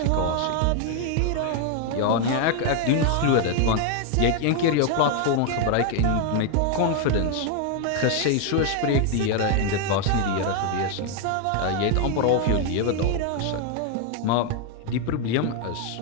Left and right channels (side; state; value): both; different; correlation 0.00